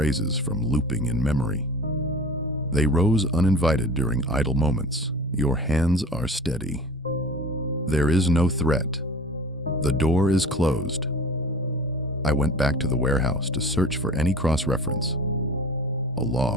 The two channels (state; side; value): normal; both; correlation 0.39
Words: from looping in memory. They rose uninvited during idle moments. Your hands are steady. There is no threat. The door is closed. I went back to the warehouse to search for any cross-reference. A